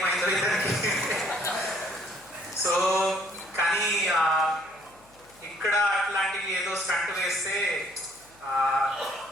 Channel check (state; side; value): noise; left; hum, 28 dB below the sound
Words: ఇతనికి. సో కానీ ఇక్కడ అట్లాంటివి ఏదో స్టంట్ వేస్తే